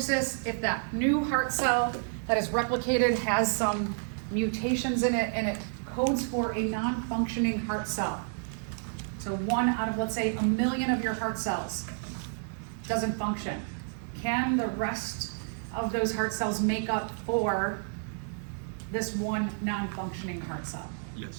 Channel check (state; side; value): silent; left; 58 dB below the other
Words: if that new heart cell that is replicated has some mutations in it, and it codes for a non-functioning heart cell. So 1 out of, let's say, 1 million of your heart cells doesn't function. Can the rest of those heart cells make up for this one non-functioning heart cell?